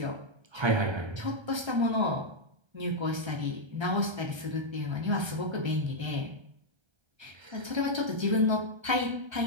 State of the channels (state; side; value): late; left; 1.3 ms